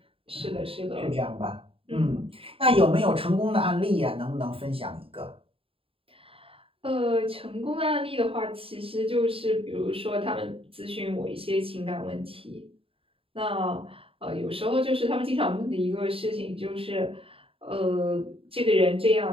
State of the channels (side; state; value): left; late; 0.27 ms